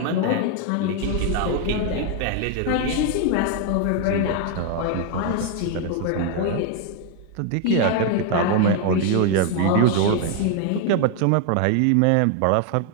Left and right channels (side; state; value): both; different; correlation 0.01